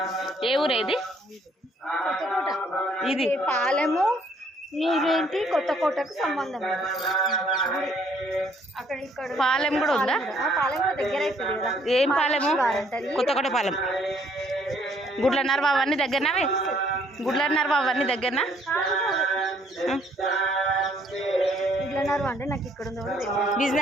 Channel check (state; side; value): normal; both; correlation 0.65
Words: ఏ ఊరు ఇది? ఇది పాలెము నీరేంటి కొత్తకోటకు సంబంధం. అక్కడ ఇక్కడ పాలెం కూడా ఉందా? పాలెం కూడా దగ్గర అవుతుంది కదా. ఏం పాలెము? కొత్తకోట పాలెం. గుడ్లన్నర బాబు అన్నీ దగ్గరనావే? గుడ్లన్నర బాబు అన్నీ దగ్గరనా? గుడ్లన్నర అంటే నాకు ఇక్కడ ఉంది.